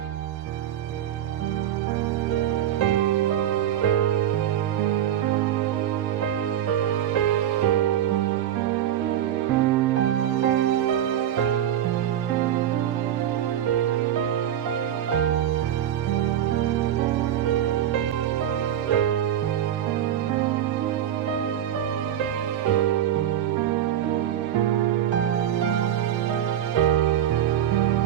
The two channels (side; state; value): left; quieter; 10.8 dB